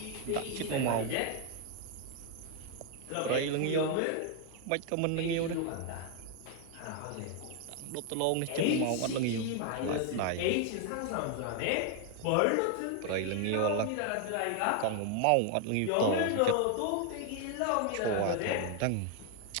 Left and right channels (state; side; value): different; both; correlation 0.00